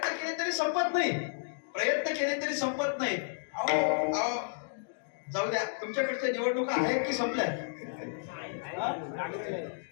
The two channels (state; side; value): silent; right; digital silence